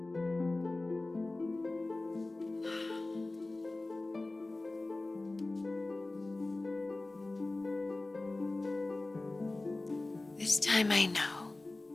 This time I know.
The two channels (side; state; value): right; quieter; 3.0 dB